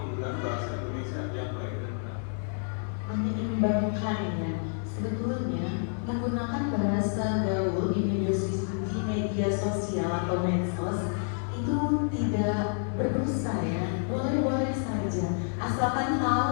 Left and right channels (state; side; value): silent; right; 58 dB below the other